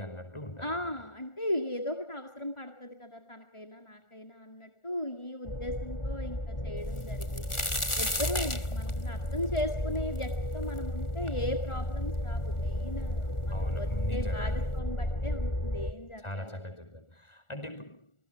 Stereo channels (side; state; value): right; late; 1.4 ms